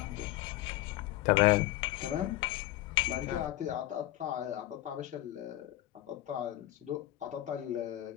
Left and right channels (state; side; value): quieter; right; 15.3 dB